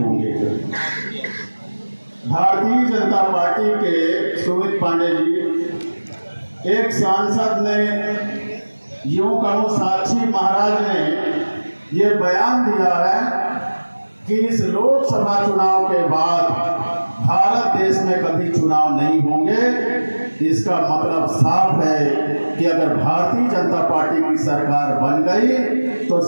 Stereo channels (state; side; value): inverted; both; correlation -1.00